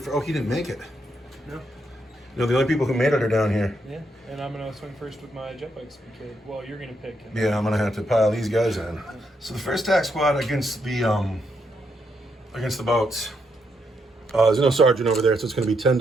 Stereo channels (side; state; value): both; normal; correlation 0.79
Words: Oh, he didn't make it. No. No, the only people who made it are down here. Yeah, and I'm gonna swing first with my jet bike speed kid. Well, you're gonna pick. Yeah, I'm gonna have to pile these guys in. So the first attack squad against the boats. There's no sergeant over there, so it's gonna be 10